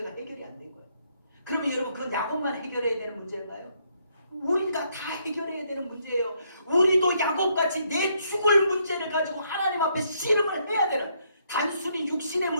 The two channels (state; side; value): inverted; both; correlation -0.72